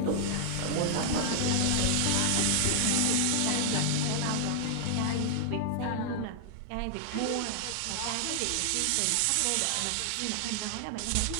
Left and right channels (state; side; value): different; both; correlation -0.01